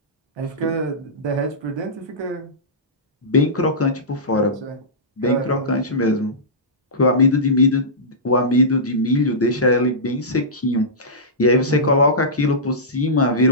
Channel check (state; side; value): normal; both; correlation -0.18